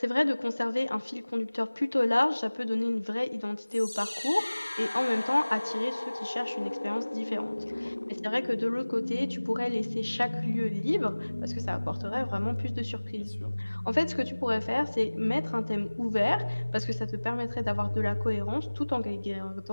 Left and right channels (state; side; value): inverted; both; correlation -1.00